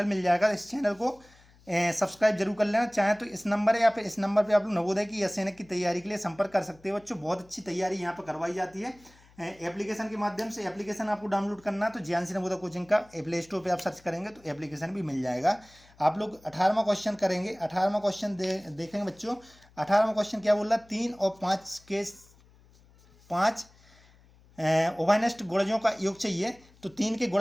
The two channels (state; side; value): noise; left; hum, 28 dB below the sound